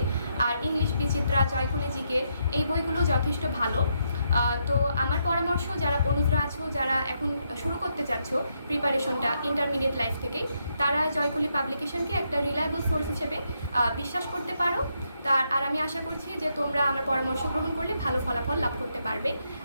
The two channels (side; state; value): both; inverted; correlation -0.79